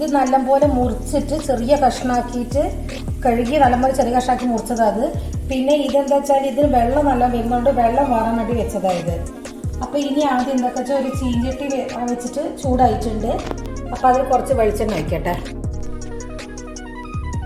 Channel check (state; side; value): identical; both; correlation 1.00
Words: നല്ലപോലെ മുറിച്ചിട്ട് ചെറിയ കഷ്ണാക്കിയിട്ട് കഴുകി നല്ലപോലെ ചെറിയ കഷ്ണാക്കി മുറിച്ചതാണ്. പിന്നെ ഇതെന്താ വെച്ചാൽ ഇതിന് വെള്ളം നല്ല വരുന്നുണ്ട്, വെള്ളം വാറാൻ വേണ്ടി വെച്ചതായത്. അപ്പോൾ ഇനി ആദ്യം എന്താ വെച്ചാൽ ഒരു ചീഞ്ചട്ടി വെച്ചിട്ട് ചൂടായിട്ടുണ്ട്. അപ്പോൾ അതിൽ കുറച്ച് വെളിച്ചെണ്ണ വയ്ക്കട്ടെ.